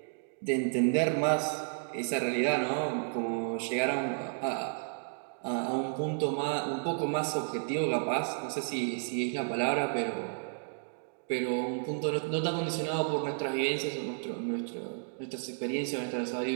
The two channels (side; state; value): left; silent; digital silence